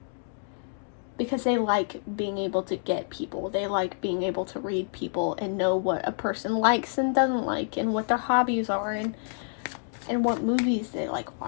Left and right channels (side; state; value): right; silent; digital silence